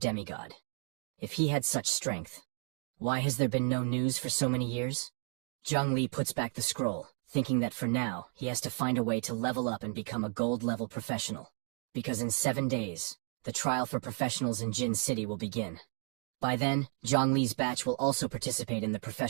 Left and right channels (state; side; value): quieter; left; 39.1 dB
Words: If he had such strength, why has there been no news for so many years? Zhang Li puts back the scroll, thinking that for now, he has to find a way to level up and become a gold-level professional. Because in 7 days, the trial for professionals in Jin City will begin. By then, Zhang Li's batch will also participate in the